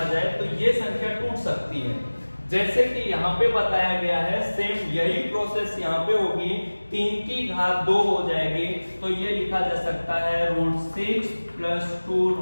जाए तो ये संख्या टूट सकती है। जैसे कि यहाँ पे बताया गया है, सेम यही प्रोसेस यहाँ पे होगी, 3 की घात 2 हो जाएगी, तो ये लिखा जा सकता है √6 प्लस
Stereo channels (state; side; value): inverted; both; correlation -1.00